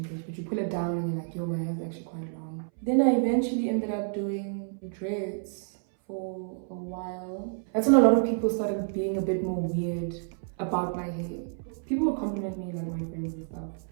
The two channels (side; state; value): left; silent; 58 dB below the other